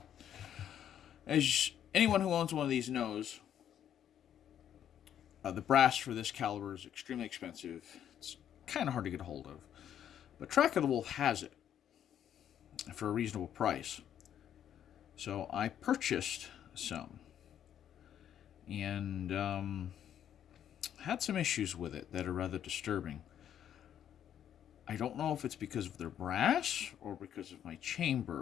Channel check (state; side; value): quieter; right; 9.9 dB